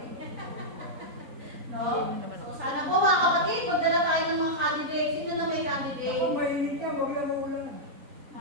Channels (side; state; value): left; late; 4.4 ms